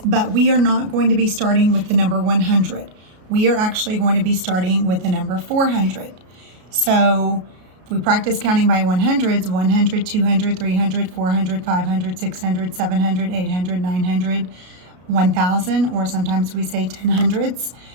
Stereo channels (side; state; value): left; late; 33 ms